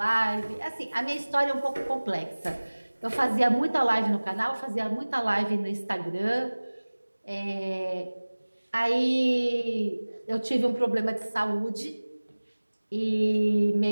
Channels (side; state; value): both; inverted; correlation -1.00